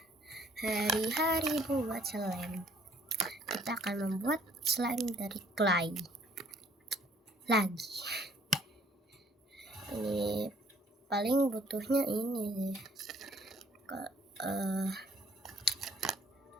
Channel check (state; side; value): normal; both; correlation 0.60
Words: hari-hari buat slime. Kita akan membuat slime dari clay lagi. Ini paling butuhnya ini sih.